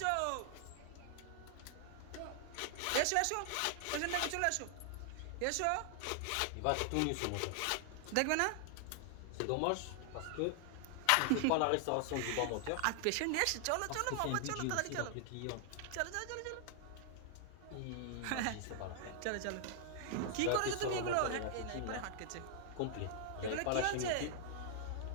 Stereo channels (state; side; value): different; both; correlation 0.00